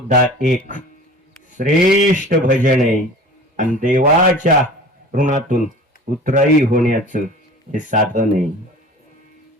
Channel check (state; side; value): normal; both; correlation 0.41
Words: एक श्रेष्ठ भजन आहे, आणि देवाच्या ऋणातून उतराई होण्याचं हे साधन आहे.